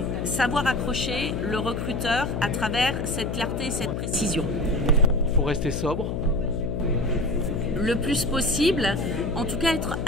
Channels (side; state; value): left; noise; hum, 3 dB below the sound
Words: savoir accrocher le recruteur à travers cette clarté et cette précision. Il faut rester sobre. Le plus possible, en tout cas être